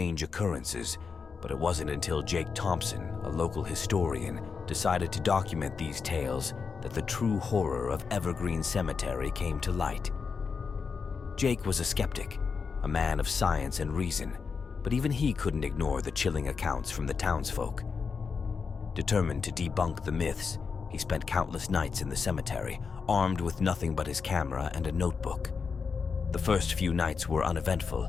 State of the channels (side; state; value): right; quieter; 5.4 dB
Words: occurrences, but it wasn't until Jake Thompson, a local historian, decided to document these tales that the true horror of Evergreen Cemetery came to light. Jake was a skeptic, a man of science and reason, but even he couldn't ignore the chilling accounts from the townsfolk. Determined to debunk the myths, he spent countless nights in the cemetery, armed with nothing but his camera and a notebook. The first few nights were